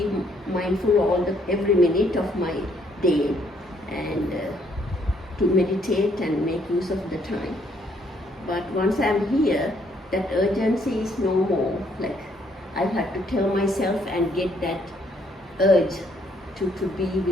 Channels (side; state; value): both; normal; correlation 0.68